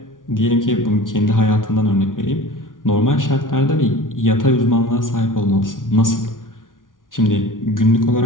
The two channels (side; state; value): right; late; 0.88 ms